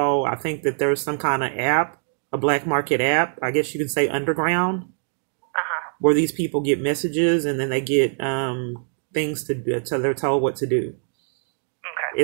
I think that there's some kind of app, a black market app, I guess you can say underground, where these people get messages and then they get things to do, so they're told what to do. Okay.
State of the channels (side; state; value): left; silent; digital silence